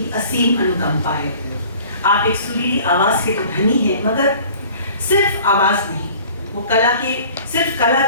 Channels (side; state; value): both; inverted; correlation -0.49